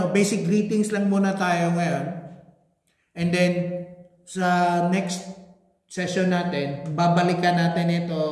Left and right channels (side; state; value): both; identical; correlation 1.00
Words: basic greetings lang muna tayo ngayon. And then, sa next session natin, babalikan natin